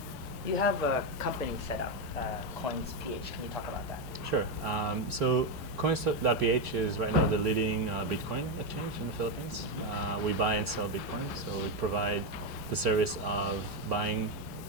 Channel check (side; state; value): both; normal; correlation 0.07